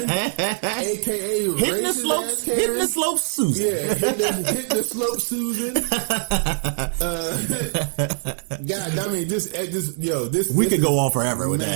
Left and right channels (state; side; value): silent; left; digital silence